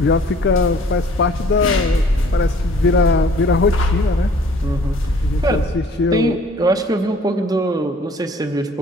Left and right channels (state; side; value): normal; both; correlation 0.54